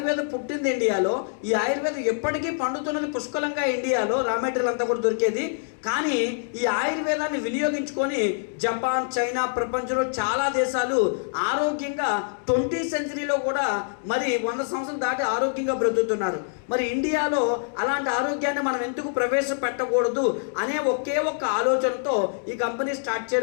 పుట్టింది ఇండియాలో. ఈ ఆయుర్వేదం ఎప్పటికీ పండుతున్నది పుష్కలంగా ఇండియాలో, రా మెటీరియల్ అంతా కూడా దొరికేది. కానీ ఈ ఆయుర్వేదాన్ని వినియోగించుకొని జపాన్, చైనా, ప్రపంచంలో చాలా దేశాలు ఆరోగ్యంగా 20th సెంచరీలో కూడా మరి 100 సంవత్సరాలు దాటి ఆరోగ్యంగా బ్రతుకుతున్నారు. మరి ఇండియాలో అలాంటి ఆరోగ్యాన్ని మనం ఎందుకు ప్రవేశపెట్టకూడదు అనే ఒకే ఒక్క ఆలోచనతో ఈ కంపెనీ స్టార్ట్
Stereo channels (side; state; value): right; silent; digital silence